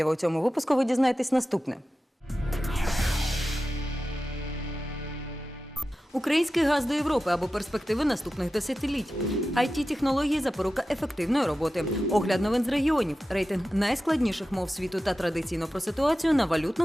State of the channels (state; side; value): normal; both; correlation 0.93